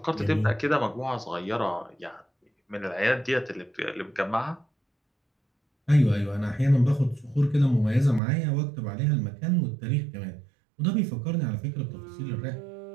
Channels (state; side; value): drops out; left; at 8.2 s